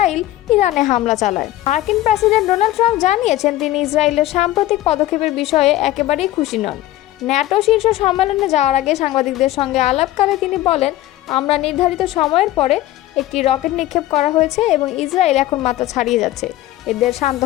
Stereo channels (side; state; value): right; quieter; 15.3 dB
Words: ইরানে হামলা চালায়। মার্কিন প্রেসিডেন্ট ডোনাল্ড ট্রাম্প জানিয়েছেন, তিনি ইসরায়েলের সাম্প্রতিক পদক্ষেপের বিষয়ে একেবারেই খুশি নন। ন্যাটো শীর্ষ সম্মেলনে যাওয়ার আগে সাংবাদিকদের সঙ্গে আলাপকালে তিনি বলেন, আমরা নির্ধারিত সময়ের পরে একটি রকেট নিক্ষেপ করা হয়েছে এবং ইসরায়েল এখন মাথা ছাড়িয়ে যাচ্ছে, এদের শান্ত